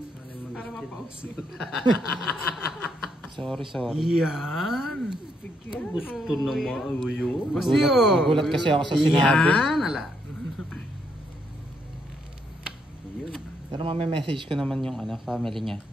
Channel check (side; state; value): both; normal; correlation 0.75